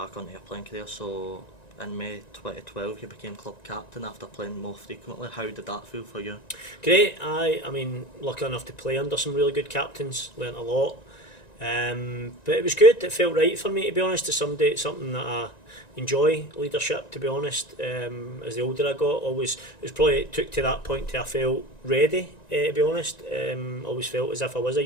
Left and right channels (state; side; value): late; right; 1.9 ms